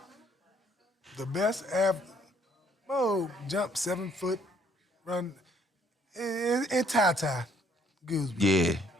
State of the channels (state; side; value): normal; both; correlation 0.64